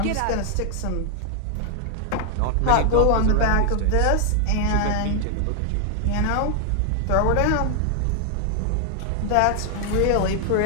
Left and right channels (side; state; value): both; different; correlation 0.00